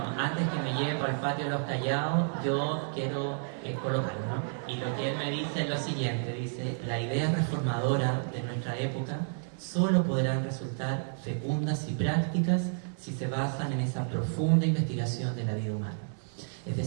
antes que me lleve por el patio de los callados, yo quiero colocarlo, ¿no? Y lo que él me dice es lo siguiente, dice, la idea reformadora de nuestra época solo podrán resultar fecundas y prácticas si se basan en esa profunda investigación de la vida humana. Es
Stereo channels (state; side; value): silent; left; digital silence